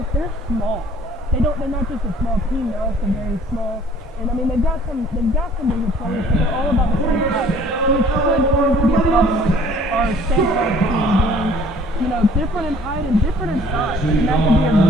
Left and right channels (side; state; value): both; normal; correlation 0.55